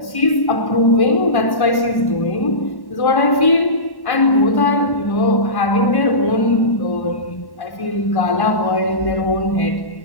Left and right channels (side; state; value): right; late; 1.1 ms